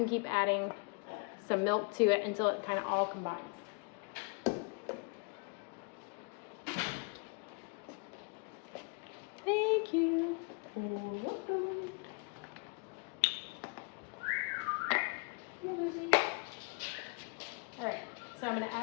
keep adding some milk to it until it kind of all combines. Thank you. All right, so I'm gonna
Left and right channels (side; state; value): right; quieter; 33.0 dB